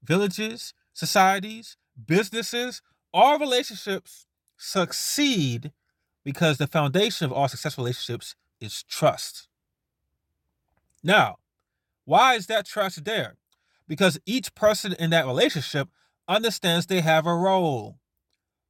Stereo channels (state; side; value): identical; both; correlation 1.00